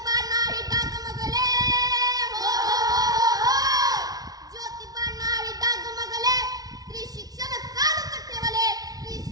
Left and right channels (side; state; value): left; late; 0.18 ms